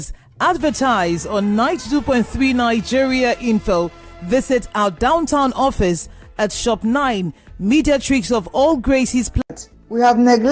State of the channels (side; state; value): both; identical; correlation 1.00